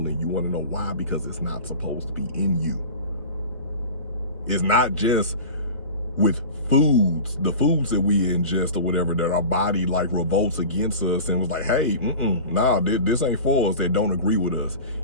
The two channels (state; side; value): inverted; both; correlation -0.35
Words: in you. You want to know why? Because it's not supposed to be in you. It's not just with foods, the foods that we ingest or whatever, that our body like revolts against us and was like, hey, this ain't for us, that don't agree with us.